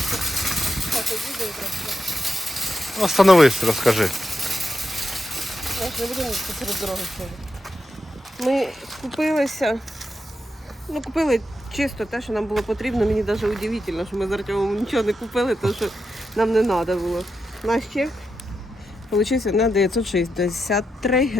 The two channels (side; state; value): both; normal; correlation 0.86